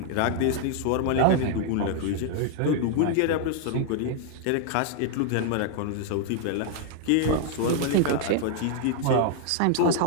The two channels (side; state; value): both; different; correlation 0.00